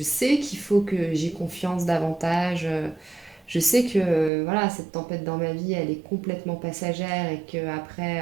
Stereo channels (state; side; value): drops out; left; at 4.3 s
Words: sais qu'il faut que j'ai confiance davantage. Je sais que voilà, cette tempête dans ma vie, elle est complètement passagère et